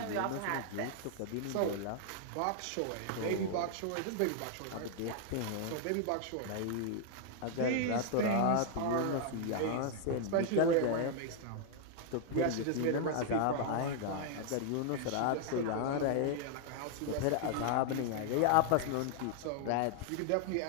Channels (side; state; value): both; different; correlation 0.00